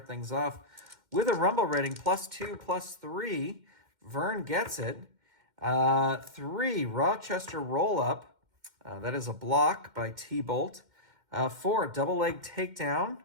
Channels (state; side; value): late; left; 2.1 ms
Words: things off with a rumble rating +2, +3. Vern gets it. 3, Rochester roll-up. That is a block by T-Bolt. 4, double leg takedown.